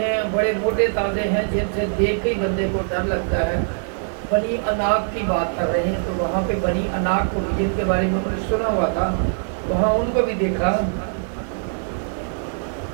बड़े मोटे ताजे हैं, जिनसे देख के ही बंदे को डर लगता है। बनी अनाक की बात कर रहे हैं। तो वहाँ पे बनी अनाक को जिनके बारे में उन्होंने सुना हुआ था वहाँ उनको भी देखा।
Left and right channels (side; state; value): left; silent; digital silence